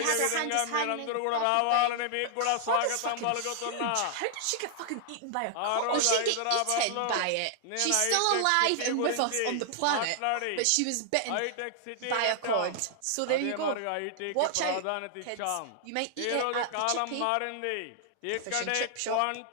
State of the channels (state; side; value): different; both; correlation 0.00